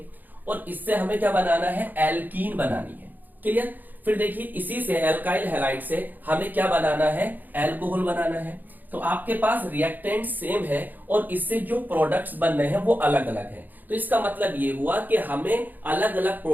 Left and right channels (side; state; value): left; late; 0.086 ms